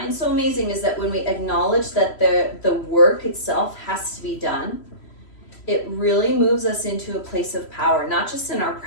so amazing is that when we acknowledge that the work itself has to be done, it really moves us into a place of power, not just in our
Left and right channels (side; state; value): right; late; 3.0 ms